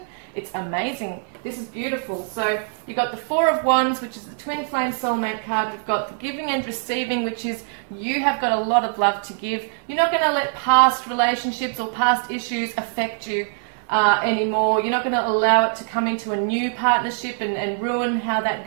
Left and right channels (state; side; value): silent; left; digital silence